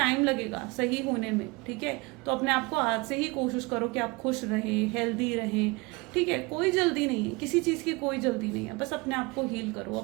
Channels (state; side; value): quieter; left; 25.6 dB